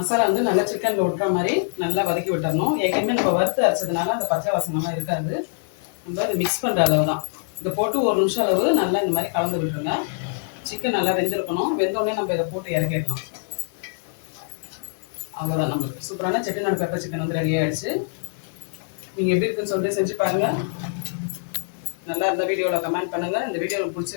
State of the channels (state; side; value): silent; right; digital silence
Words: வந்து நல்லா சிக்கனில் விட்டுற மாதிரி நல்லா வதக்கி விட்டுறணும். ஏற்கனவே நம்ம வறுத்து அரைச்சதுனால அந்த பச்சை வாசனைலாம் இருக்காது. நம்ம அதை மிக்ஸ் பண்ணுற அளவு தான். இதை போட்டு 1 நிமிஷம் அளவு நல்லா இந்த மாதிரி கலந்து விட்டுருங்க. சிக்கன் நல்லா வெந்திருக்கணும். வெந்தோடனே நம்ம இதை போட்டு இறக்கிடலாம். அவ்வளோதான். நம்மளுக்கு சூப்பரான செட்டிநாடு பெப்பர் சிக்கன் வந்து ரெடி ஆகிடுச்சு. நீங்கள் எப்படி இருக்குன்னு சொல்லிட்டு செஞ்சு பாருங்கள். நல்லா இருந்த வீடியோவில் கமெண்ட் பண்ணுங்கள். இந்த வீடியோ